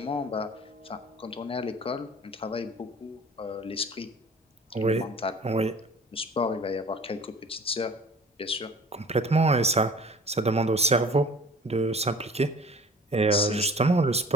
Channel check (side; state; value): both; normal; correlation 0.47